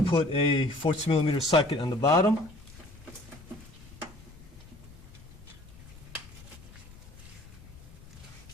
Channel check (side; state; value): left; noise; rumble, 19 dB below the sound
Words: put a 14mm socket on the bottom.